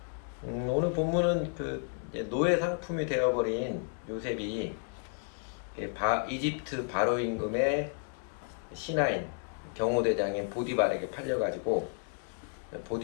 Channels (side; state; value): right; silent; 56 dB below the other